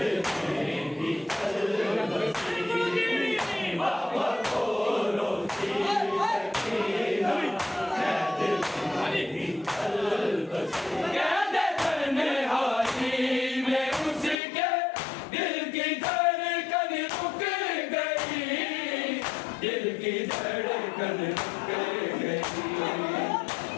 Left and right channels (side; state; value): right; drops out; at 14.4 s